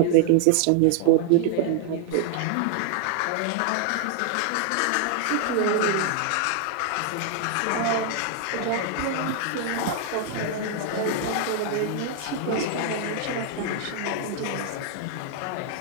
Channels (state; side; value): different; both; correlation 0.00